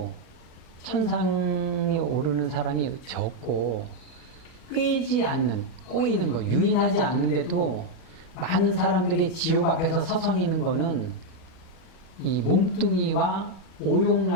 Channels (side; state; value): right; late; 37 ms